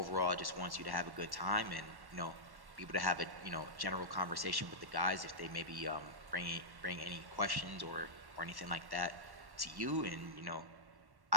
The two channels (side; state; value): left; late; 1.1 ms